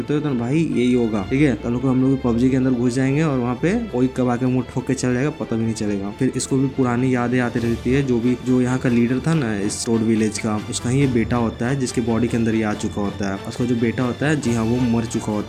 हो, तो भाई यही होगा, ठीक है। तो हम लोग पबजी के अंदर घुस जाएंगे और वहाँ पे कोई कब आके मुंह ठोक के चल जाएगा, पता भी नहीं चलेगा। फिर इसको भी पुरानी यादें आती रहती है। जो यहाँ का लीडर था ना इस टोड विलेज का, उसका ही ये बेटा होता है जिसके बॉडी के अंदर ये आ चुका होता है। उसका जो बेटा होता है, जी हाँ, वो मर चुका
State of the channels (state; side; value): identical; both; correlation 1.00